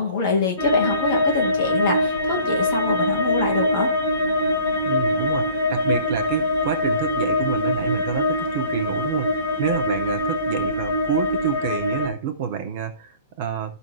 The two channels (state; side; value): inverted; both; correlation -0.50